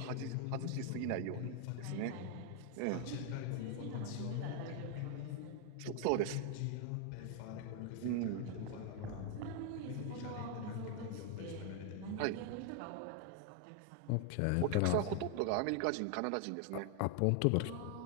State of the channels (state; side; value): different; both; correlation 0.00